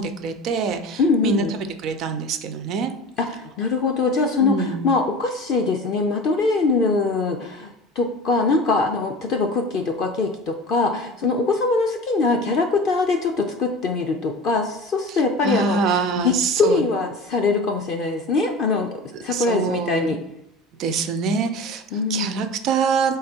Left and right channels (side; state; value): both; normal; correlation 0.35